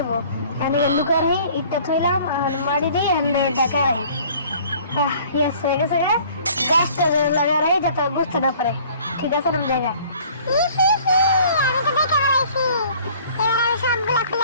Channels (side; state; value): both; inverted; correlation -0.52